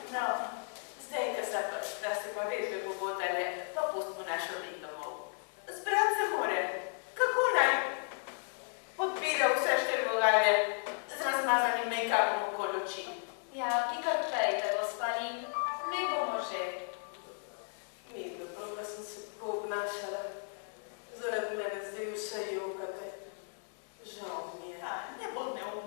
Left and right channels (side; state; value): right; silent; 55 dB below the other